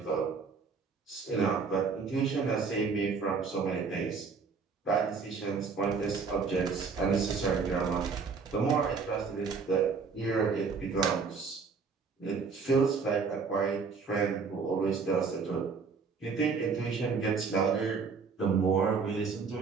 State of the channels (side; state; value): left; quieter; 5.2 dB